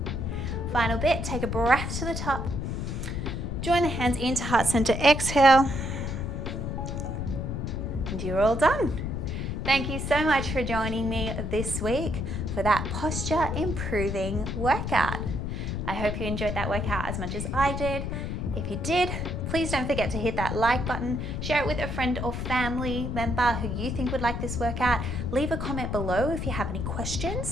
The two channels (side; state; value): left; noise; rumble, 3 dB below the sound